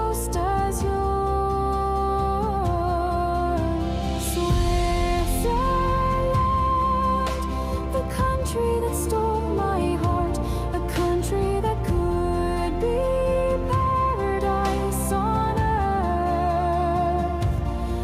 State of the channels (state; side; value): identical; both; correlation 1.00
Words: azure. The country that stole my heart, a country that could be paradise on earth.